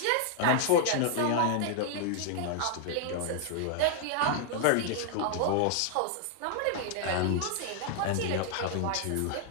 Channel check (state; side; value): different; both; correlation -0.01